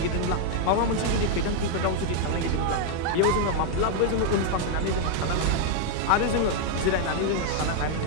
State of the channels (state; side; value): different; both; correlation 0.00